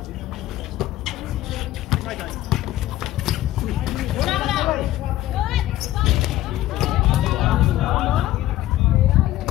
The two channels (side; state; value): right; quieter; 14.8 dB